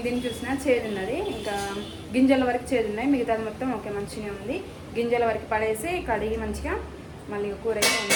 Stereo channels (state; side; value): identical; both; correlation 1.00